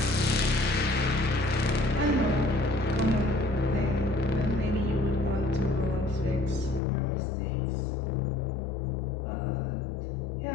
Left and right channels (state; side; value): drops out; right; at 6.8 s